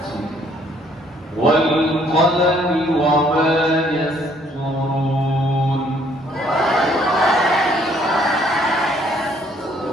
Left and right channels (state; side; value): normal; both; correlation 0.63